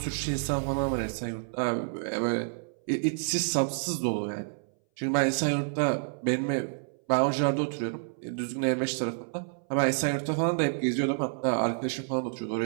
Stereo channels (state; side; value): silent; left; 59 dB below the other